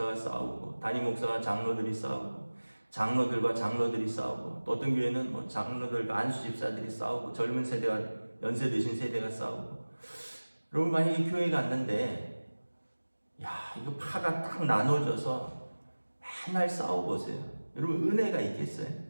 싸우고 담임 목사와 장로들이 싸우고 장로들과 장로들이 싸우고 또 어떤 교회는 뭐 장로들과 안수 집사들이 싸우고 젊은 세대와 연세 드신 세대가 싸우고. 여러분 만약에 교회 갔는데 이거 파가 딱 나눠져서 맨날 싸워보세요. 여러분 은혜가 있겠어요?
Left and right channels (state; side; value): inverted; both; correlation -1.00